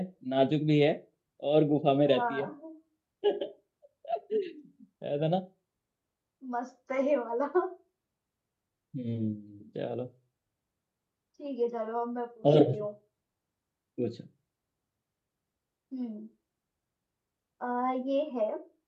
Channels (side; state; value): both; identical; correlation 1.00